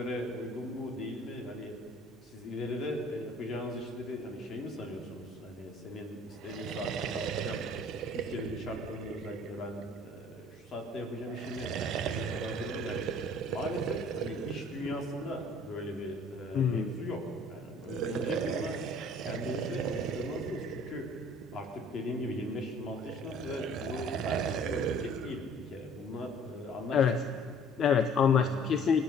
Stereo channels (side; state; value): both; normal; correlation 0.53